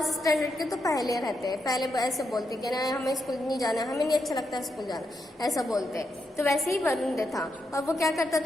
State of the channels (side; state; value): both; normal; correlation 0.83